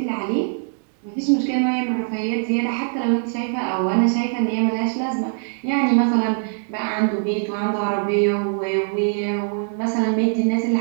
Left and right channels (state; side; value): silent; left; digital silence